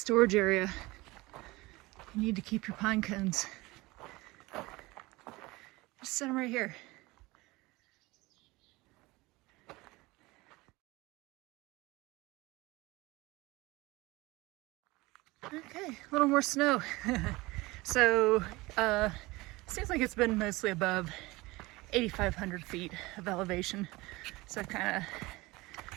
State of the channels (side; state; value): left; quieter; 21.6 dB